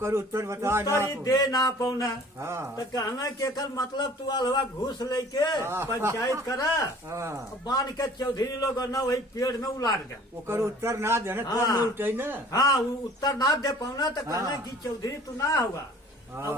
उत्तर बता उत्तर ही दे ना पौना हाँ। तो कहना के एकर मतलब तू अलवा घूस लेके हाँ। पंचायत करा हाँ बांध के चौधरी लोग न वही पेड़ में उलाट गए ओकर उत्तर ना देने तो हाँ। नहीं उठे ना हाँ वो उत्तर ना दे पाना तो कहना हाँ। कि चौधरी तू ना हुआ हाँ, अब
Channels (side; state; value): both; normal; correlation 0.49